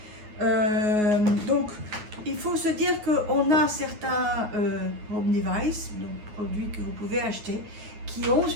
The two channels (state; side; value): late; left; 9.5 ms